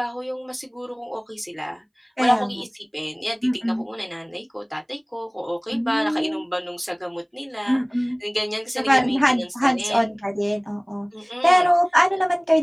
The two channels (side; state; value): both; identical; correlation 1.00